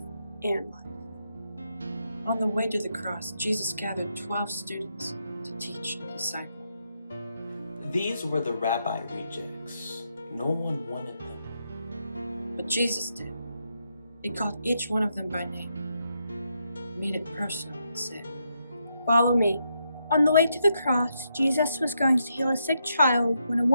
and life. On the way to the cross, Jesus gathered 12 students to teach and disciple. These were the rabbi rejects. No one wanted them. But Jesus did. He called each one of them by name, made it personal, and said, "Follow me." On the way to the cross, Jesus was going to heal a sick child when a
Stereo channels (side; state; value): both; inverted; correlation -0.80